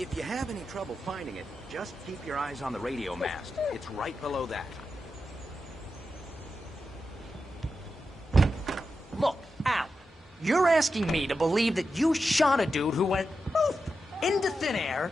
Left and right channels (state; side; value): normal; both; correlation 0.89